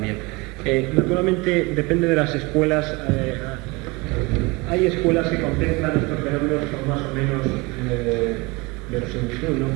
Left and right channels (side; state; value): left; quieter; 25.0 dB